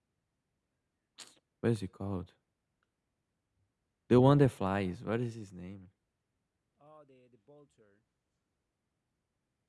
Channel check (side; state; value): both; identical; correlation 1.00